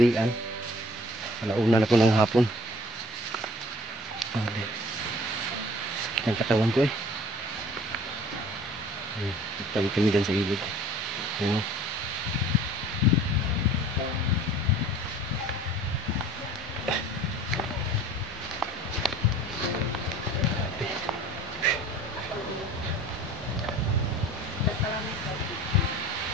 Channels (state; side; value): normal; both; correlation 0.48